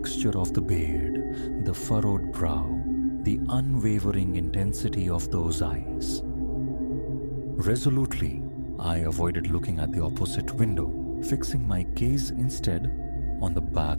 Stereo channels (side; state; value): both; inverted; correlation -1.00